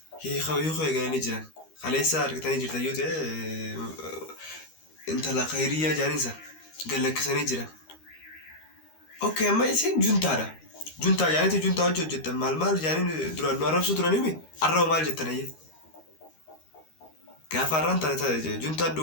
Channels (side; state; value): right; late; 13 ms